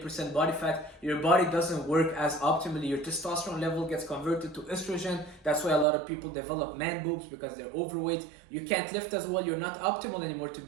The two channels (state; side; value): drops out; left; at 5.9 s